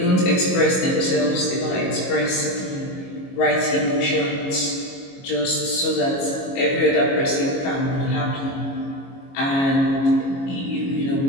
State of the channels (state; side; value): late; right; 22 ms